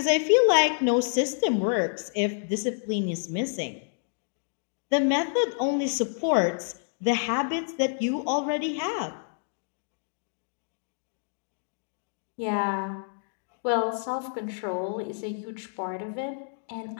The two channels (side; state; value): right; silent; digital silence